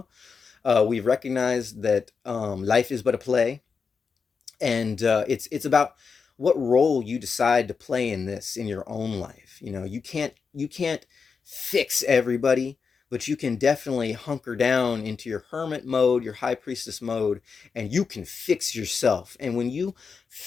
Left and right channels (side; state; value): right; quieter; 5.5 dB